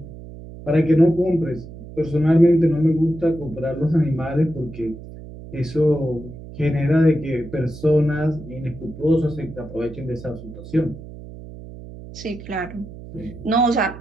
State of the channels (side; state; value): right; noise; hum, 14 dB below the sound